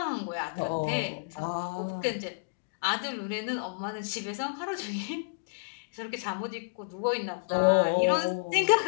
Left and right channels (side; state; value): right; quieter; 34.1 dB